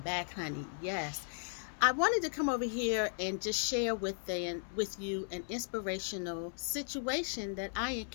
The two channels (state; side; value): silent; right; 54 dB below the other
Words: back, honey. Yes. I wanted to come over here and just share with you an inspirational situation that I